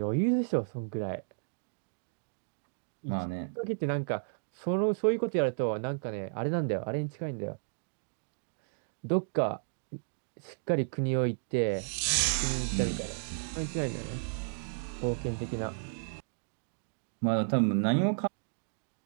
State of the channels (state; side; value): silent; left; digital silence